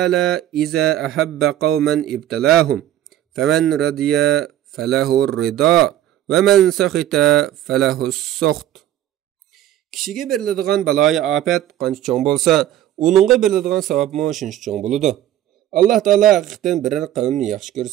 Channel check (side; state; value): left; quieter; 12.4 dB